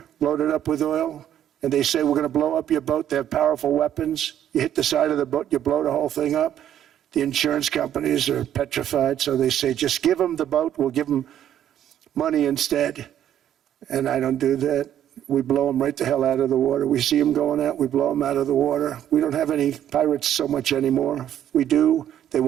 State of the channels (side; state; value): left; quieter; 10.7 dB